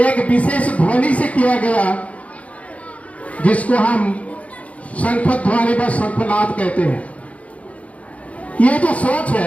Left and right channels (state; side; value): late; right; 0.066 ms